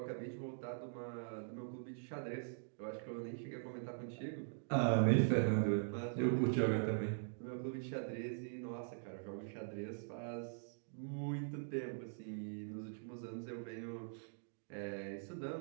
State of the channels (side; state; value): left; silent; digital silence